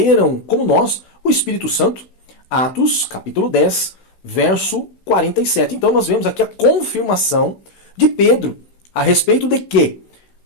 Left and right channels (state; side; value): late; right; 16 ms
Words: como nós, o Espírito Santo? Atos, capítulo 10, verso 47. Então nós vemos aqui a confirmação de Pedro a respeito de que